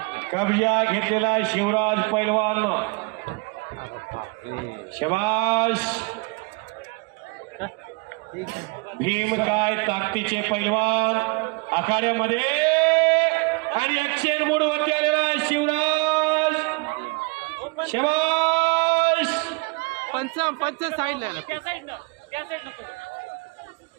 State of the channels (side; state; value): left; quieter; 29.5 dB